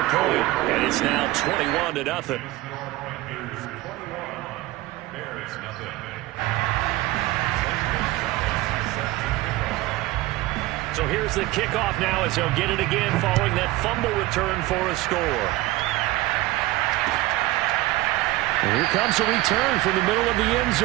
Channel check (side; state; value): left; quieter; 18.1 dB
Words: point, and it's now 21-0. So here's the kickoff now as he'll get it again following that fumble return for a score. And here comes a return from the middle of the end